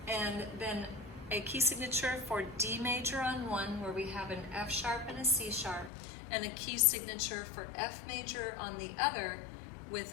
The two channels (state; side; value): drops out; right; at 5.9 s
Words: and then a key signature for D major on one, where we have an F sharp and a C sharp, and a key signature for F major on the other with